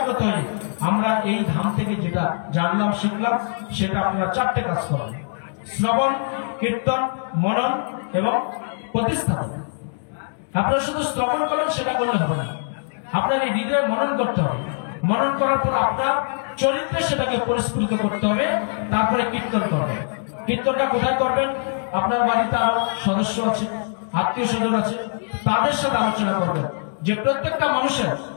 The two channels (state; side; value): silent; right; digital silence